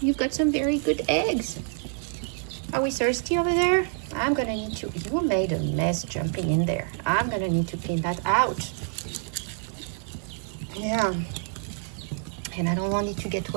you've got some very good eggs. Are we thirsty over there? I'm gonna need to, you made a mess jumping in there. I'm gonna need to clean that out. Yeah. And I don't want it to get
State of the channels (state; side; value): silent; left; 57 dB below the other